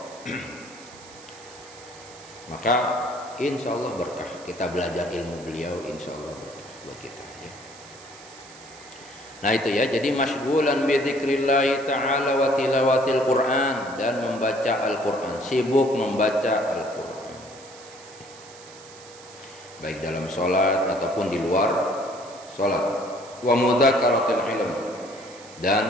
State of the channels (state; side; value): noise; right; hiss, 20 dB below the sound